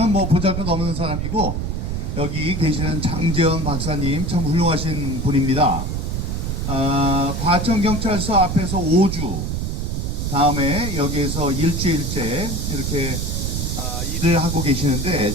뭐 보잘것없는 사람이고 여기 계시는 장재현 박사님 참 훌륭하신 분입니다. 과천경찰서 앞에서 5주, 다음에 여기에서 일주일째 이렇게 일을 하고 계시는데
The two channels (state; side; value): noise; right; rumble, 2 dB below the sound